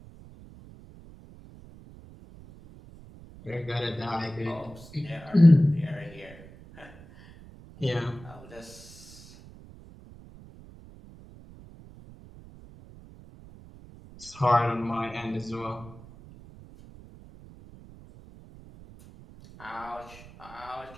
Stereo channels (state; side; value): noise; right; rumble, 19 dB below the sound